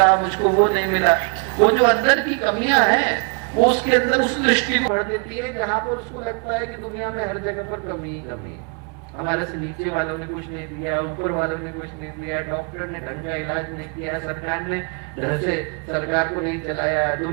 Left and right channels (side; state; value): left; quieter; 36.2 dB